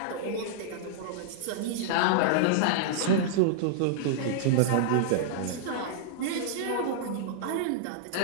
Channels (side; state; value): both; different; correlation -0.02